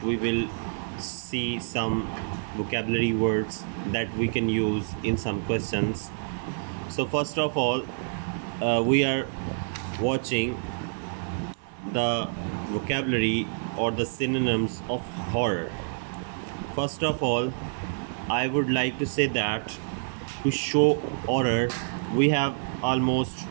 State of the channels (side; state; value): left; silent; 56 dB below the other